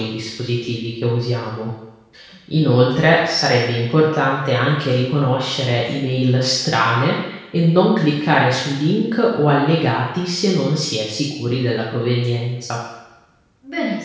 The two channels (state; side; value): identical; both; correlation 1.00